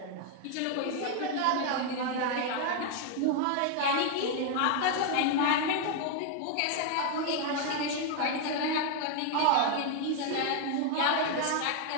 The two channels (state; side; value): different; both; correlation 0.01